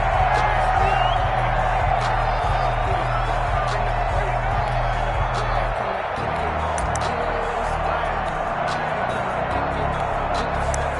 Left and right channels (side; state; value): both; identical; correlation 1.00